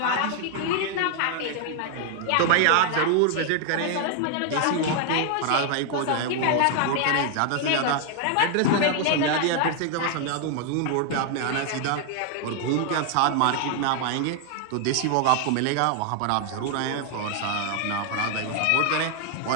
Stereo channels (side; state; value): both; different; correlation 0.00